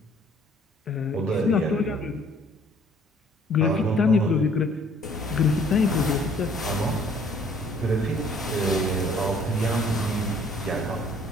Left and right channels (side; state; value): both; normal; correlation 0.58